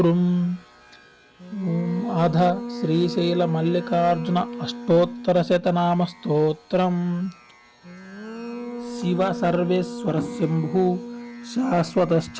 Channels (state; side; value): identical; both; correlation 1.00